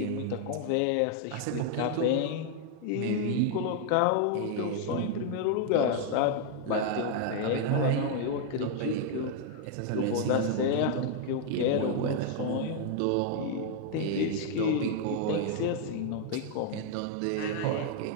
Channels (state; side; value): different; both; correlation 0.00